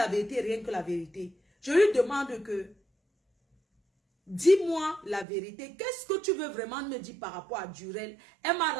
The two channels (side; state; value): left; drops out; at 5.2 s